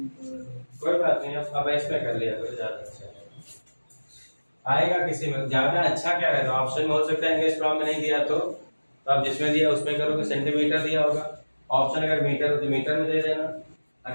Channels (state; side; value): inverted; both; correlation -1.00